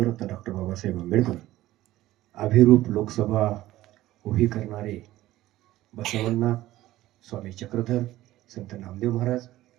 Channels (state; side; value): quieter; left; 15.7 dB